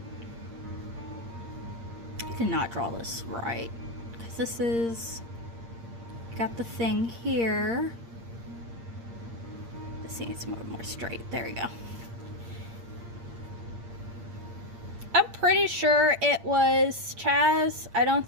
Did not draw this right, because this is got the thing here. This needs more straight. There we go. I'm pretty sure it was Chaz. I don't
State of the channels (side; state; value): left; late; 8.7 ms